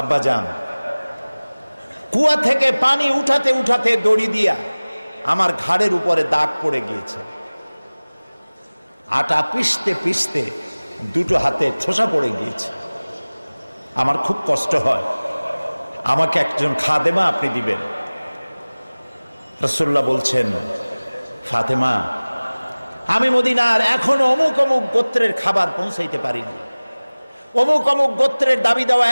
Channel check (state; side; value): inverted; both; correlation -1.00